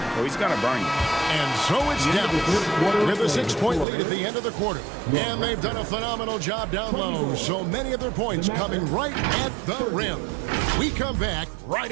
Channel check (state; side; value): drops out; left; at 3.9 s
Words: or he's going to burn you. And so it's Dallas with a 6-point lead at the end of the quarter. And they've done a phenomenal job down low. So many of their points coming right at the rim. We come back right